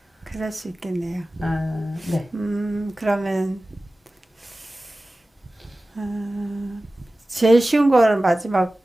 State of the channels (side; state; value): both; normal; correlation 0.96